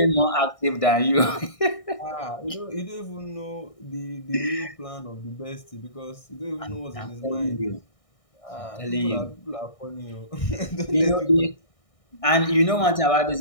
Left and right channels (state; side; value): late; right; 1.6 ms